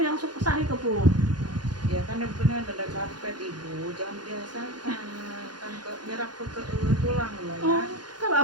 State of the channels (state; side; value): late; left; 0.70 ms